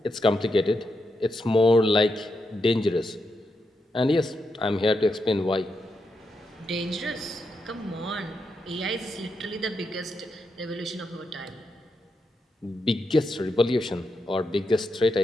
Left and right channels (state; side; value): normal; both; correlation 0.84